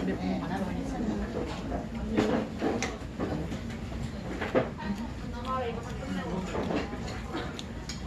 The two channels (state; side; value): identical; both; correlation 1.00